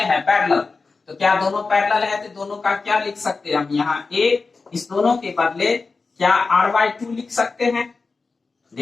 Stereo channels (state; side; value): quieter; right; 4.2 dB